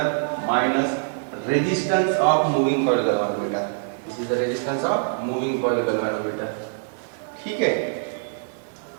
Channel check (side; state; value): left; silent; 63 dB below the other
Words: minus resistance of moving coil galvanometer। This is the resistance of moving coil galvanometer। ठीक है,